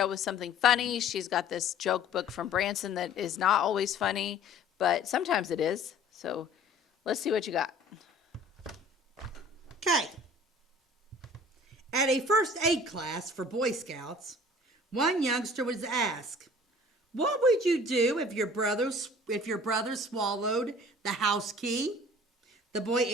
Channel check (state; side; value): normal; both; correlation 0.49